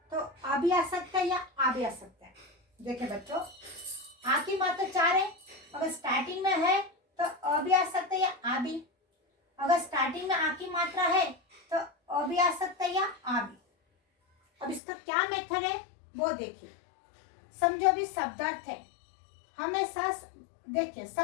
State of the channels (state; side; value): drops out; right; at 14.8 s